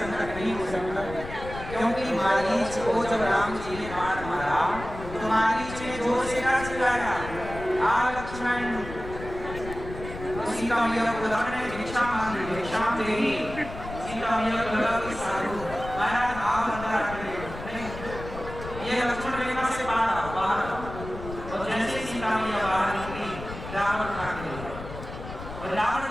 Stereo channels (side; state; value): left; noise; rumble, 11 dB below the sound